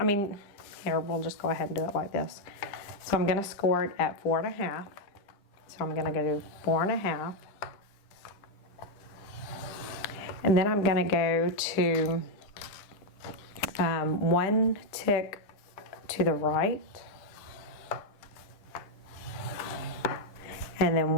mean, here, we'll just go ahead and do it like this. So I'm going to score it at 4.5. So I'm going to go to 4.5. And then I'm going to go to one tick to the right. And then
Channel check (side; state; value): right; late; 10 ms